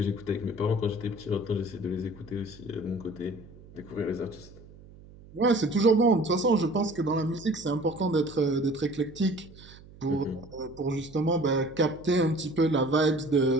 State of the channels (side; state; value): right; noise; hum, 21 dB below the sound